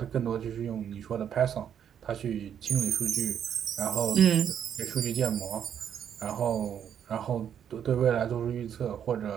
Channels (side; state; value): left; quieter; 8.9 dB